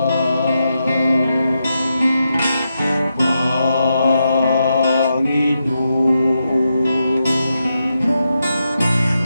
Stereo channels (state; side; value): inverted; both; correlation -0.85